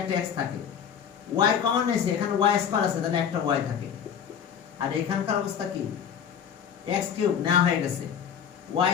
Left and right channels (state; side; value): quieter; right; 8.0 dB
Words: x থাকে, y কমন নিয়েছি এখানে y স্কয়ার আছে তাহলে একটা y থাকে। আর এখানকার অবস্থা কি, x কিউব নেওয়া হয়ে গেছে, y